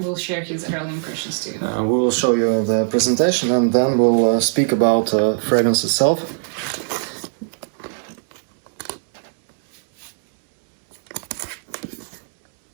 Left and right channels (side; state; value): left; silent; 66 dB below the other